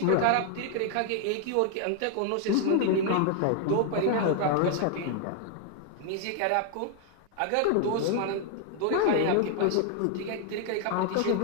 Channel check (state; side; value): different; both; correlation 0.00